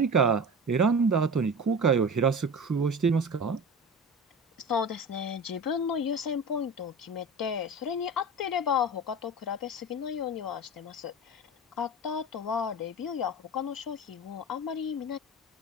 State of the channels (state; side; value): normal; both; correlation 0.31